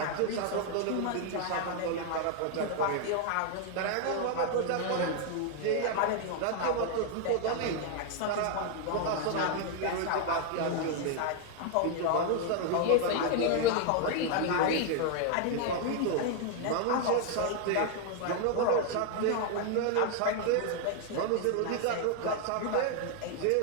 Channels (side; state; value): both; different; correlation 0.00